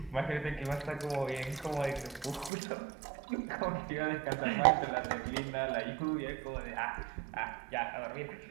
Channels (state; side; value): drops out; left; at 2.5 s